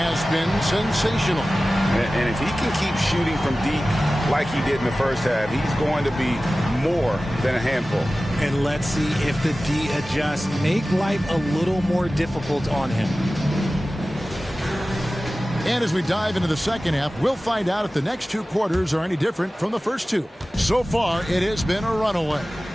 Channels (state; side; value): normal; both; correlation 0.96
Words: been sensational. And if he can keep shooting from deep like he did in the first half, he's going to be more than a handful. And let's see if the D adjusts, make life a little more difficult on him. And as we dive into the second half, we'll find out if the next two quarters are any different from the first two. So far, it has been a runaway.